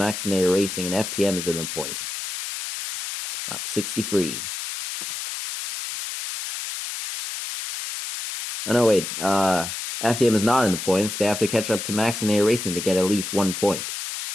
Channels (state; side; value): noise; left; hiss, 6 dB below the sound